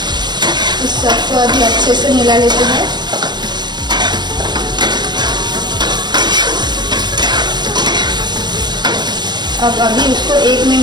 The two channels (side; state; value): left; late; 0.21 ms